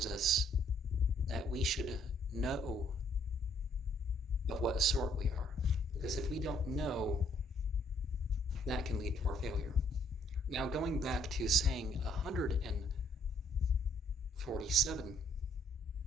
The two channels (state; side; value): normal; both; correlation 0.66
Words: us that we should know of what sort we are. Because if we don't know, that can lead to our failure. Now, going back to saying 147,